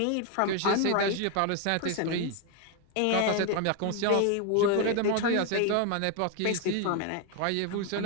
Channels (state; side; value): different; both; correlation 0.01